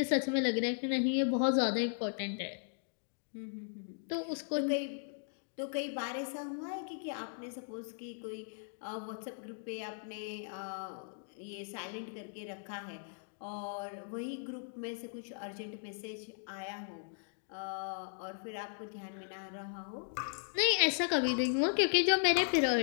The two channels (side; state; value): right; silent; digital silence